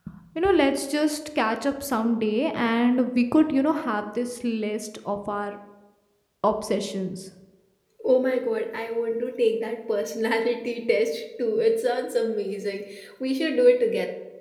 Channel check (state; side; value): identical; both; correlation 1.00